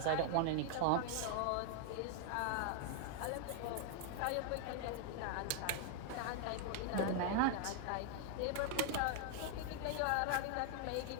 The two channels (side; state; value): both; different; correlation 0.00